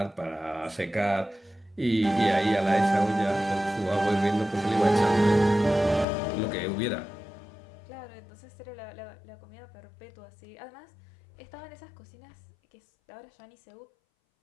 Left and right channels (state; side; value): drops out; right; at 6.1 s